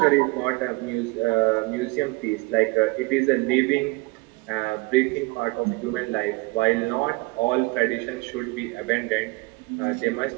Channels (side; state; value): left; quieter; 25.1 dB